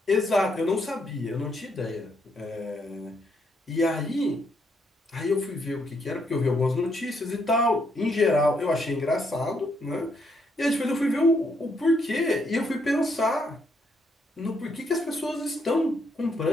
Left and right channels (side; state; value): both; normal; correlation 0.74